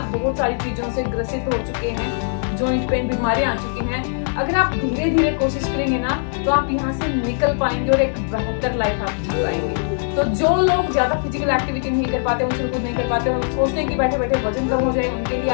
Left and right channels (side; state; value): right; silent; digital silence